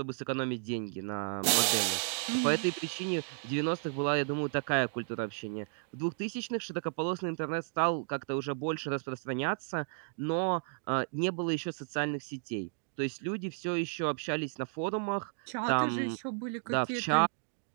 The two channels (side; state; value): left; silent; 56 dB below the other